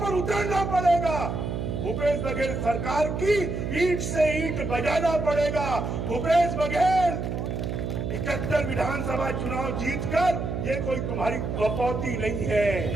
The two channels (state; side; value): noise; right; hum, 3 dB below the sound